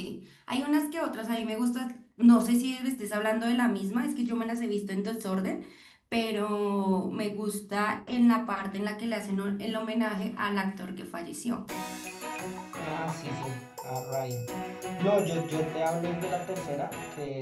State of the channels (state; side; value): identical; both; correlation 1.00